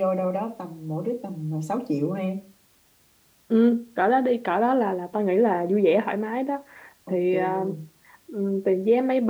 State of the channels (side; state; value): both; identical; correlation 1.00